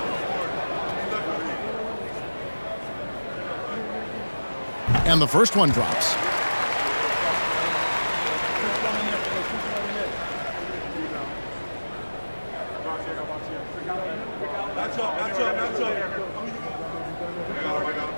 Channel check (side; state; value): both; inverted; correlation -1.00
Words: And the first one drops.